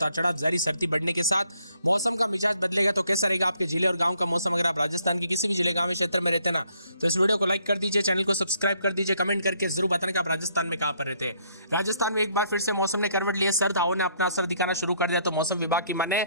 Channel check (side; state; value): both; inverted; correlation -0.69